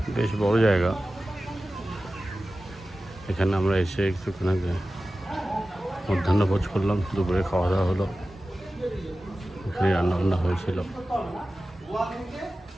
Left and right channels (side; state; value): both; normal; correlation 0.95